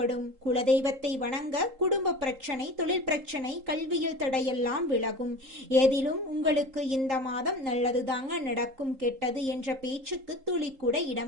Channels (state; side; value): late; left; 3.8 ms